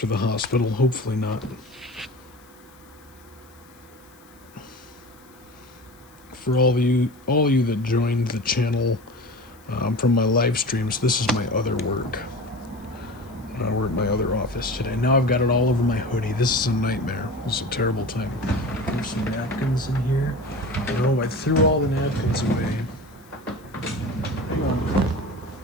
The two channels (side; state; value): left; noise; hiss, 28 dB below the sound